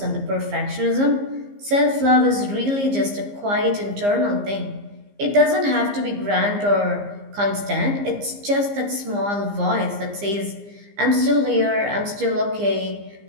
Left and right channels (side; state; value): left; late; 15 ms